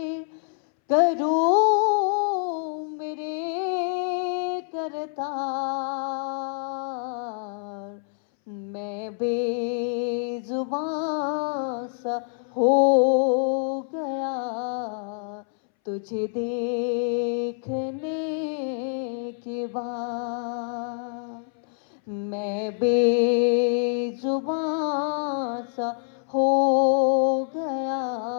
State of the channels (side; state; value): right; silent; 61 dB below the other